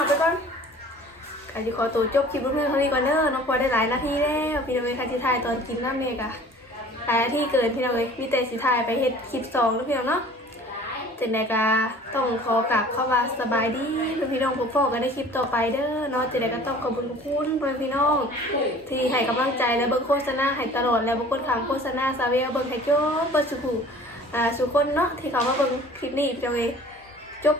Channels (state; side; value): normal; both; correlation 0.47